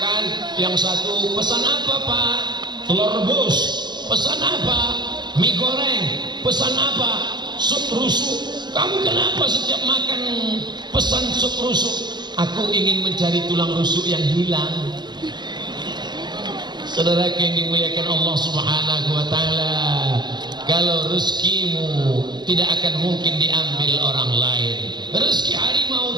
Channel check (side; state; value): left; late; 0.21 ms